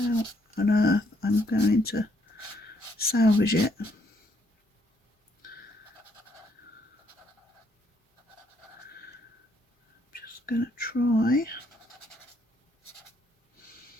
on earth I'm going to salvage it. Just going to try.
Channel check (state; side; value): normal; both; correlation 0.71